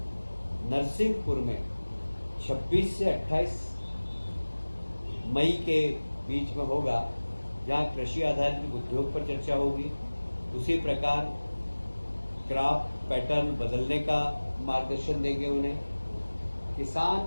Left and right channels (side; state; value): both; inverted; correlation -1.00